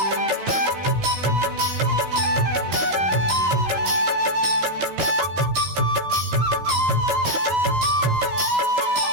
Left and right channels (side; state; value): left; late; 14 ms